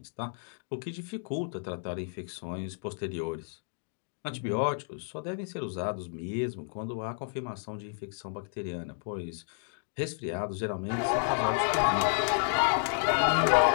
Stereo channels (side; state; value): right; silent; digital silence